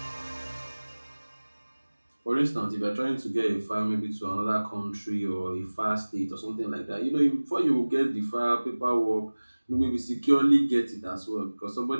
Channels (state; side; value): inverted; both; correlation -1.00